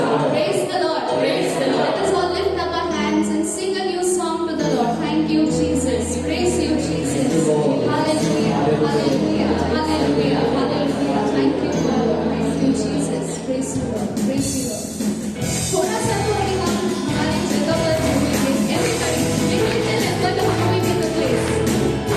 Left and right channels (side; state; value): both; identical; correlation 1.00